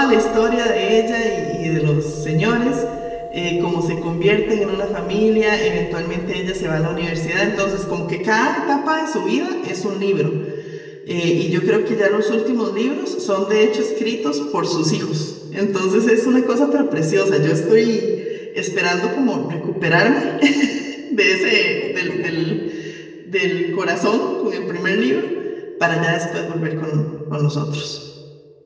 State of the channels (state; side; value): identical; both; correlation 1.00